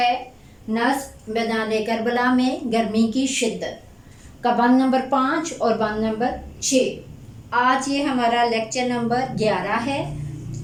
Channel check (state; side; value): identical; both; correlation 1.00